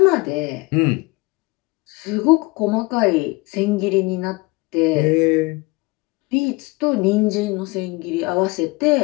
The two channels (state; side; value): quieter; right; 24.5 dB